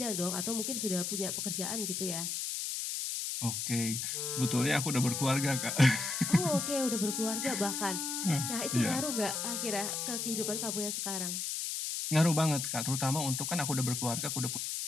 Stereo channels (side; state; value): left; noise; hiss, 2 dB below the sound